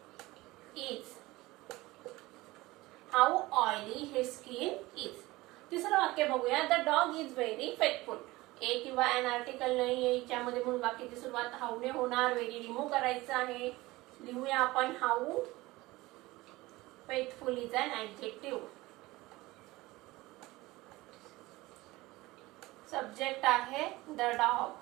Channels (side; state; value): left; quieter; 19.9 dB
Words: is, how oily his skin is. तिसरं वाक्य बघूया, the dog is very faithful. A किंवा ॲन आर्टिकल नाही आहे याच्यामध्ये म्हणून वाक्याची सुरुवात हाऊने होणार. व्हेरी रिमूव्ह करायचं आहे. लिहूया आपण, how faithful is an adjective. Subject आहे द